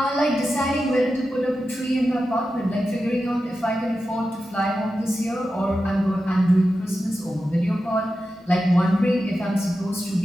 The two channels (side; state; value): both; normal; correlation 0.91